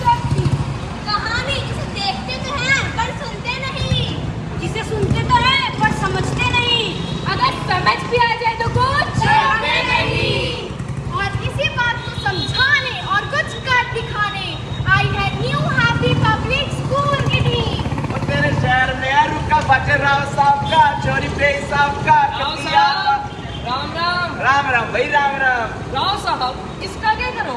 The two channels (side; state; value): both; identical; correlation 1.00